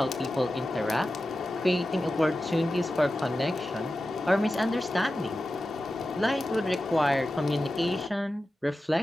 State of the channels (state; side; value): normal; both; correlation 0.93